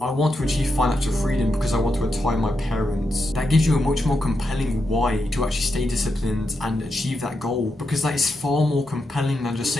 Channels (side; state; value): both; normal; correlation 0.85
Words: I want to achieve financial freedom because I want to retire my parents, that gives you a much more compelling why to actually stay disciplined and achieve that goal, because that is far more compelling than just